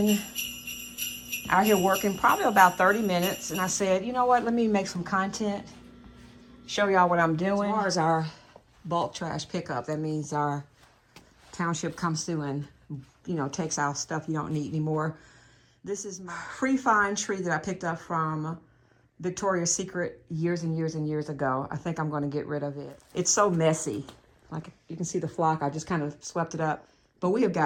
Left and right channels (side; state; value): both; identical; correlation 1.00